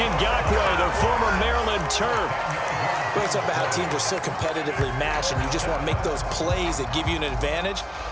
the former Maryland Terp. We're talking about how teams are so competitively matched, and you just want to make those plays that give you an advantage.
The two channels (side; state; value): both; identical; correlation 1.00